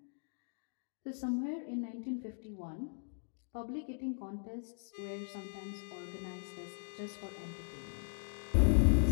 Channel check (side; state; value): right; silent; digital silence